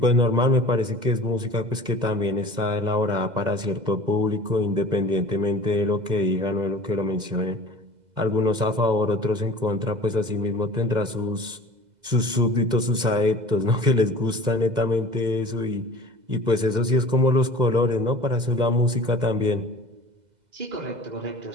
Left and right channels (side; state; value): left; late; 2.0 ms